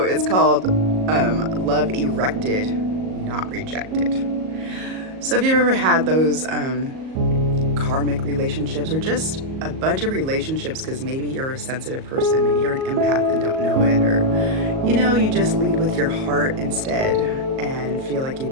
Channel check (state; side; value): late; left; 38 ms